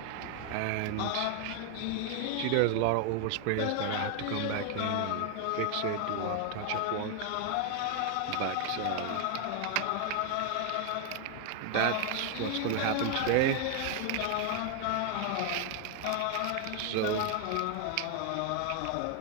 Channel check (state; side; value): different; both; correlation 0.00